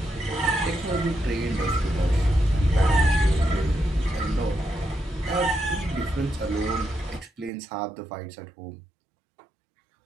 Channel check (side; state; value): left; drops out; at 7.5 s